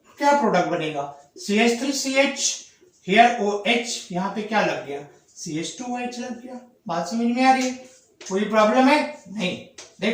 क्या प्रोडक्ट बनेगा, CH3 CH, हियर OH, यहाँ पे क्या लग गया, CH2OH लग गया, बात समझ में आ रही है, कोई प्रॉब्लम है नहीं।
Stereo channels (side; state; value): both; identical; correlation 1.00